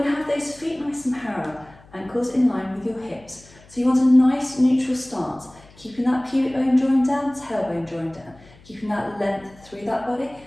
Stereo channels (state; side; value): noise; left; hum, 25 dB below the sound